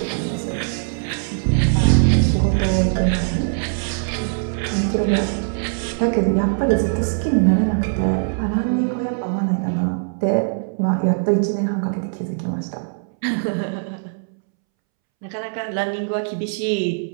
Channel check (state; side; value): silent; left; 65 dB below the other